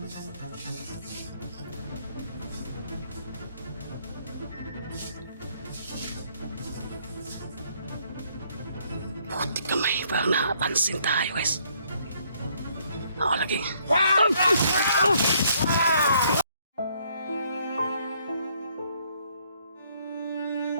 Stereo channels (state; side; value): inverted; both; correlation -0.67